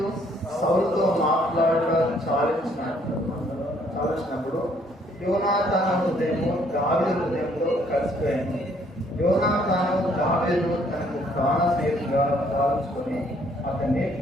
సౌలుతో మాట్లాడడం చాలించినప్పుడు యోనాతాను హృదయము దావీదు హృదయంలో కలిసిపోయింది. యోనాతాను దావీదును తనకు ప్రాణ స్నేహితుగా భావించుకొని అతన్ని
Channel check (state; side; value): normal; both; correlation 0.65